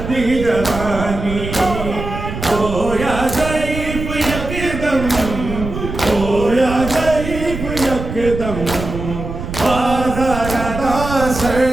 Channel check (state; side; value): noise; right; rumble, 7 dB below the sound